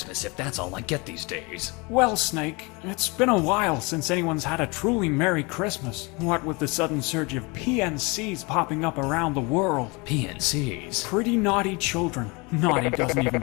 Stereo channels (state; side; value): quieter; right; 27.7 dB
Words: if that's all I get these days? Well, Snake, it's been a while since anyone's had a truly Merry Christmas. What with the sudden surge of PNCs popping up around the world. PNCs? Pretty naughty children. Naughty doesn't